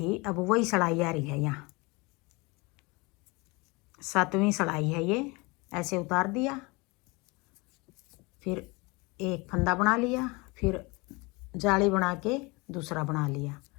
अब वही सिलाई आ रही है यहाँ, 7वीं सिलाई है ये। ऐसे उतार दिया, फिर एक फंदा बना लिया, फिर जाली बना के दूसरा बना लिया,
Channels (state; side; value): quieter; right; 26.1 dB